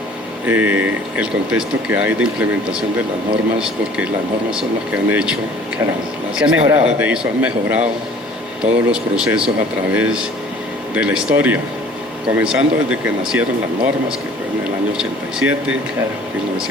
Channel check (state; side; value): normal; both; correlation 0.51